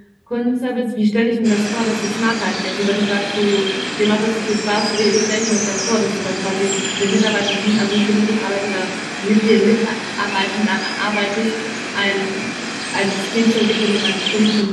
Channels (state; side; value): identical; both; correlation 1.00